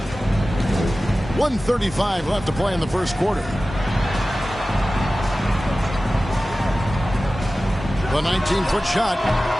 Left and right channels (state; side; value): normal; both; correlation 0.96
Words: 1:35 left to play in the first quarter. The 19-foot shot.